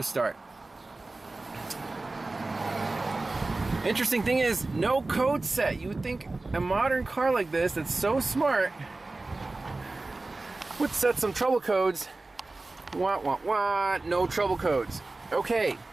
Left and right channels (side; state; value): left; quieter; 3.2 dB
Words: Interesting thing is, no code set. You would think a modern car like this that's so smart would set some trouble codes. Wah, wah, wah, no trouble codes. Okay.